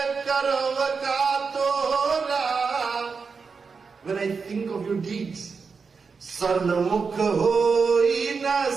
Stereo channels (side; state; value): left; quieter; 5.1 dB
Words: karvaka tora. When I think of your deeds, sarnamukh hoi na